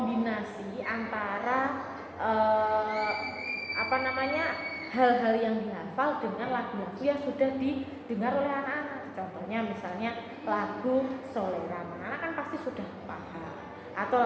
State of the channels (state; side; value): identical; both; correlation 1.00